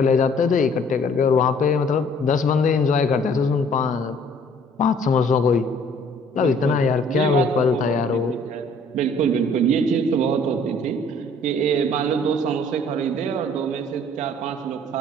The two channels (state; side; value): normal; both; correlation 0.57